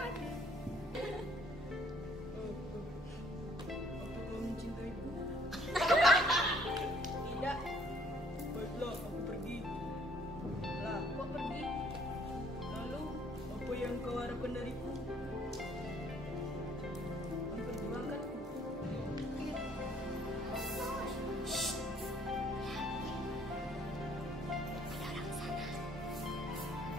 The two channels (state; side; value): normal; both; correlation 0.61